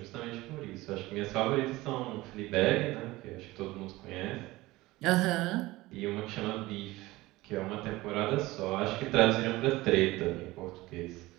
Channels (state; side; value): quieter; left; 19.3 dB